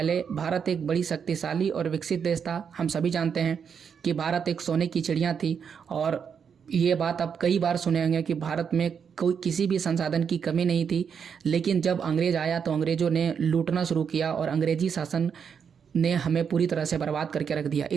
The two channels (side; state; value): left; quieter; 6.9 dB